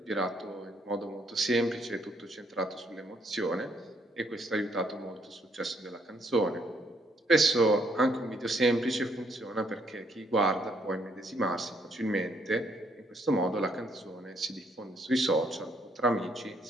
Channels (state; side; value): normal; both; correlation 0.70